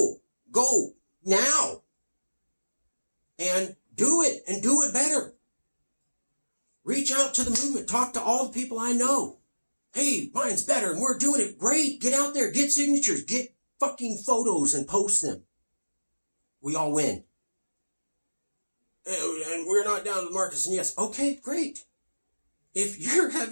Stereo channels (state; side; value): inverted; both; correlation -1.00